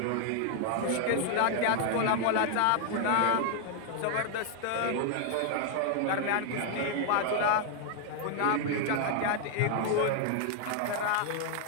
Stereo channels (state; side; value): different; both; correlation 0.00